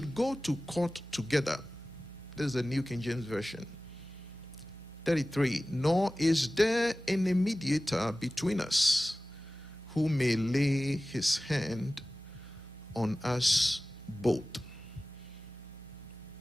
go to court together. This is the New King James Version. 33, nor is there any mediator between us who may lay his hand on us both.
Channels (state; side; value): normal; both; correlation 0.97